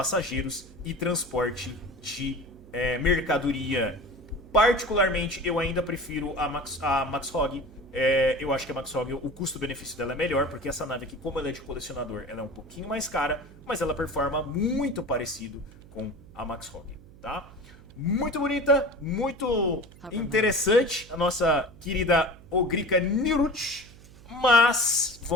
e transporte de mercadoria. Particularmente, eu ainda prefiro a Max Hog. Eu acho que a Max Hog, o custo-benefício dela é melhor, porque essa nave aqui, como ela é de colecionador, ela é um pouquinho mais cara, mas ela performa muito parecido com a Max Hog, tá? Muito bonita, muito interessante a nossa querida Ogrika Nirut. Mas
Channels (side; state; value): right; noise; hum, 21 dB below the sound